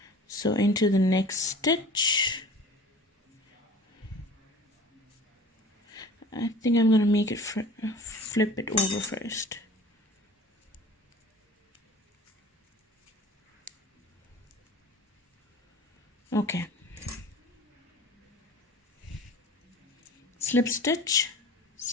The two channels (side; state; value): both; normal; correlation 0.43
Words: So into the next stitch, I think I'm going to make it flip it over first. Okay. Slip stitch